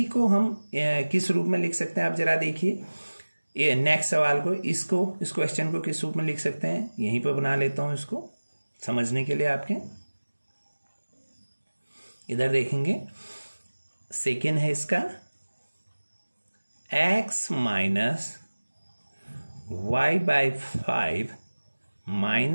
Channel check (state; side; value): inverted; both; correlation -1.00